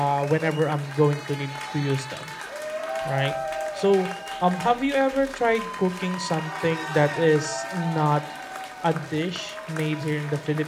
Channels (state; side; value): identical; both; correlation 1.00